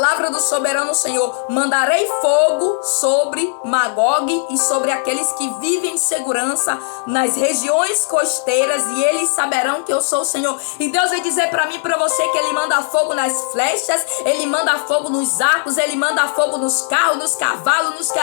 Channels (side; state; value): right; silent; 68 dB below the other